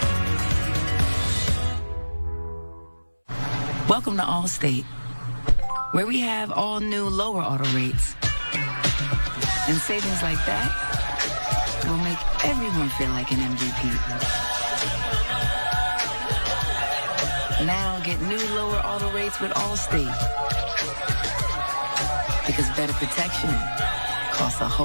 Welcome to Allstate, where we have all new lower auto rates. And savings like that will make everyone feel like an MVP. Now get new lower auto rates with Allstate. Because better protection costs a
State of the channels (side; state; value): both; inverted; correlation -1.00